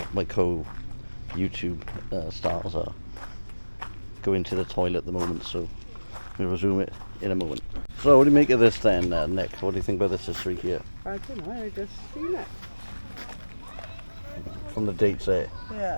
co-YouTube stars are going to the toilet at the moment, so we'll resume it in a moment. So what do you make of this then, Nick? What do you think about this history here? I don't know, I just seen it. From the dates there.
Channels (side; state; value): both; inverted; correlation -1.00